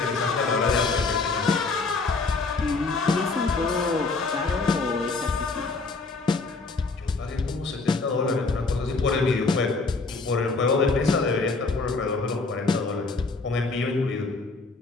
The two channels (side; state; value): right; quieter; 3.8 dB